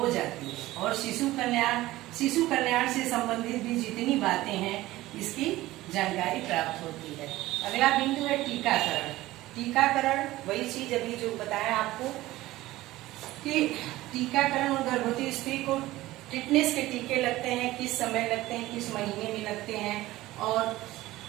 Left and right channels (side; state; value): left; quieter; 17.2 dB